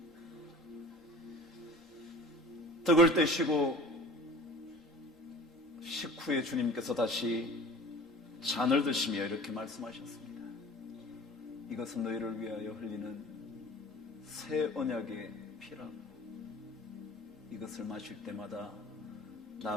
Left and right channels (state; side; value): normal; both; correlation 0.42